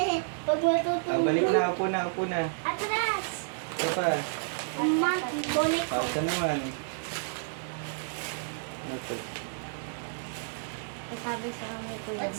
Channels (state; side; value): silent; left; digital silence